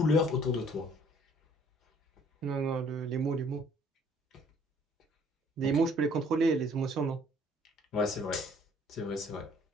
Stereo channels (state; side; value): normal; both; correlation 0.59